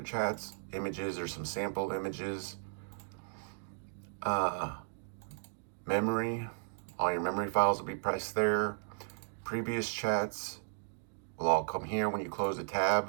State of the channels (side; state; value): left; silent; digital silence